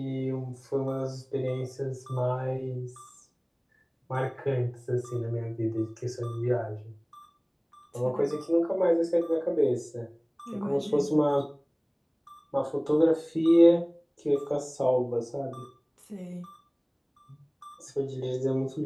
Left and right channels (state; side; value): identical; both; correlation 1.00